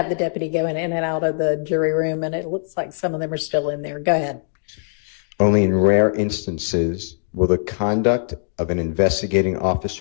the deputy going in and out of the jury room, and it looks like some of them are still in there. Go ahead. Only in rare instances will the conduct of an investigating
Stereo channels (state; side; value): silent; right; digital silence